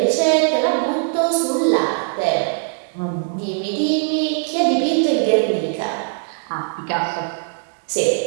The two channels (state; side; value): silent; left; digital silence